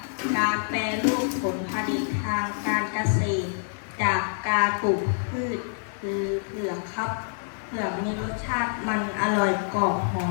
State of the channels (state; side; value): silent; right; 55 dB below the other